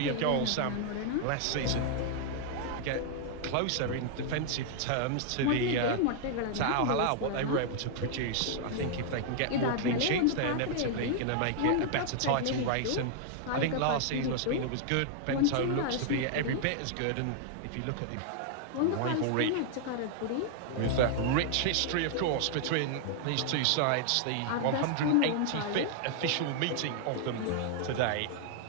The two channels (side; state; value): both; different; correlation -0.01